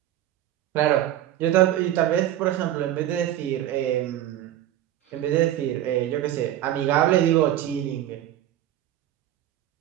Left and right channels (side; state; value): left; quieter; 12.7 dB